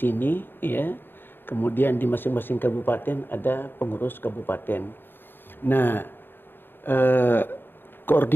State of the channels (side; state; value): right; late; 0.097 ms